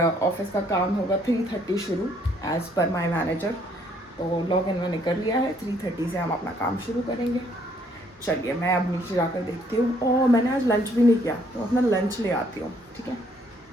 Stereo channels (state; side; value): normal; both; correlation 0.66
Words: का काम होगा 3:30 शुरू एज़ पर माई मैनेजर। तो लॉग इन मैंने कर लिया है, 3:30 से हम अपना काम शुरू करेंगे। चलिए मैं अब नीचे जाकर देखती हूँ। और मैंने आज लंच भी नहीं किया, तो अपना लंच ले आती हूँ, ठीक है।